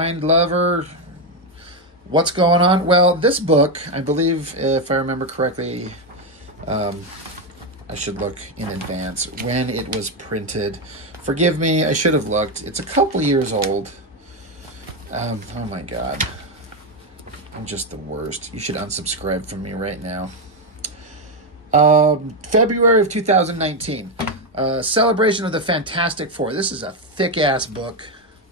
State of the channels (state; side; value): normal; both; correlation 0.07